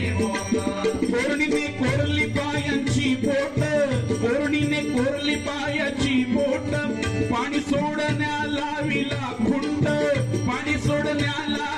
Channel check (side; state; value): both; identical; correlation 1.00